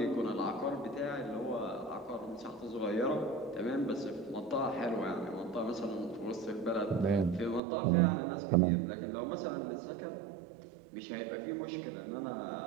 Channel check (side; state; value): left; drops out; at 7.6 s